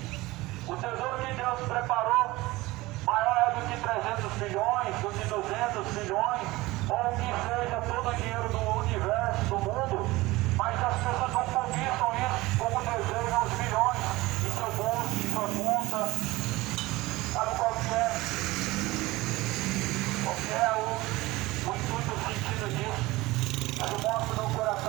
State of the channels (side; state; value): left; quieter; 19.9 dB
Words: O tesouro que Deus preparou maior é do que 300 milhões, do que 200 milhões, ou o que seja todo o dinheiro do universo, do mundo, mas as pessoas não cobiçam isso como desejam os milhões em seu bolso, em sua conta. Sabe qual que é? Qual que é o intuito, o sentido disso? Eu mostro no